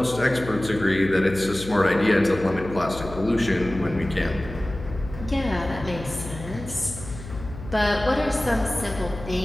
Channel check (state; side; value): noise; left; hum, 12 dB below the sound